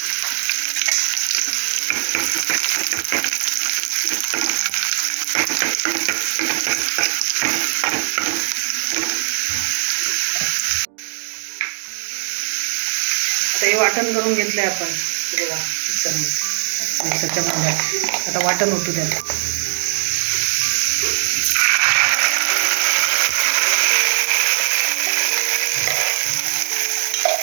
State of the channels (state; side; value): silent; left; digital silence